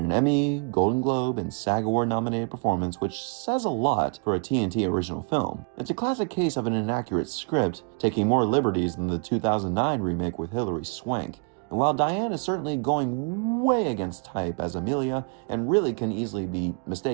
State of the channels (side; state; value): left; quieter; 36.9 dB